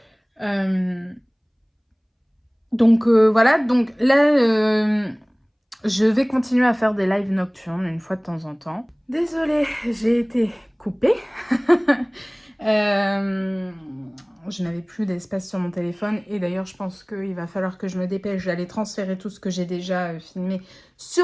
Donc voilà, donc là, je vais continuer à faire des lives nocturnes une fois de temps en temps. Désolée, j'ai été coupée. je n'avais plus d'espace sur mon téléphone. Et d'ailleurs, je pense qu'il va falloir que je me dépêche d'aller transférer tout ce que j'ai déjà filmé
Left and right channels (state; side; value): identical; both; correlation 1.00